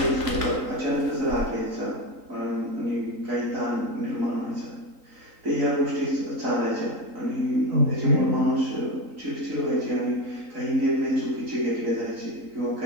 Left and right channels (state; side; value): late; left; 3.9 ms